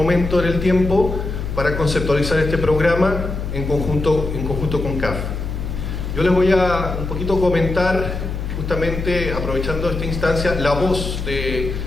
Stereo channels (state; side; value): noise; left; hum, 5 dB below the sound